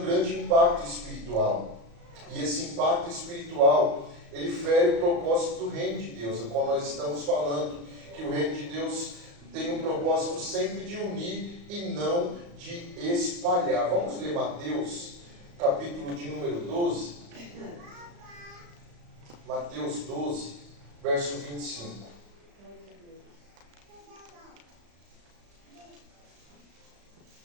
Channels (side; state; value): left; late; 35 ms